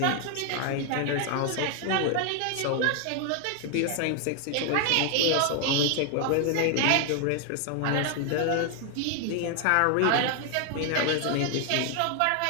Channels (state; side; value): different; both; correlation 0.00